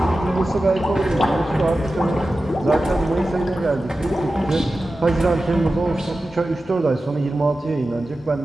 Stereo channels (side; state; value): both; normal; correlation 0.94